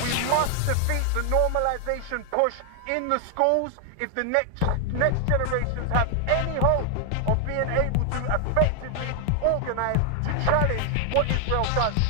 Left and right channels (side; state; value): both; different; correlation 0.00